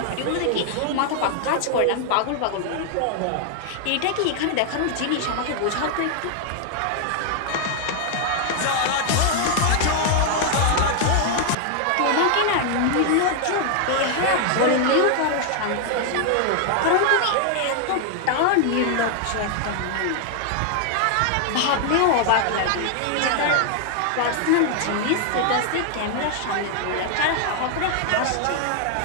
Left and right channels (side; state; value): both; different; correlation 0.00